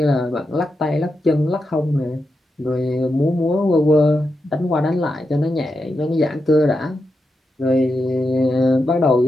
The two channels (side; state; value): both; normal; correlation 0.87